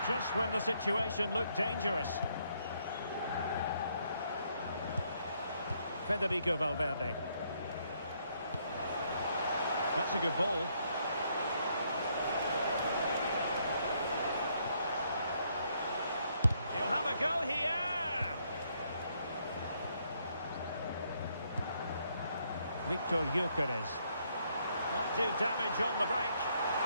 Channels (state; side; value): inverted; both; correlation -0.72